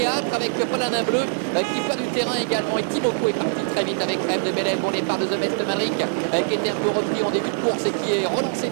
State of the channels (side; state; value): left; silent; digital silence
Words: avec Paladin Bleu qui perd du terrain également. Et Timoko est parti très vite avec Rêve de Bélève. Bon départ de The Best Madrid qui était un peu repris en début de course et qui est relancé